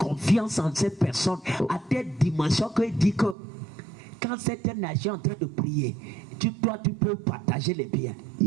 en ces personnes à telle dimension qu'il dit que quand cette nation est en train de prier, toi tu peux partager les biens.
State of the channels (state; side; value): drops out; left; at 3.4 s